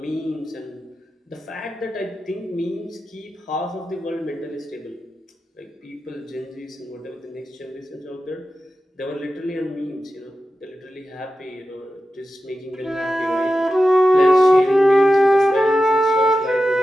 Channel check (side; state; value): both; normal; correlation 0.92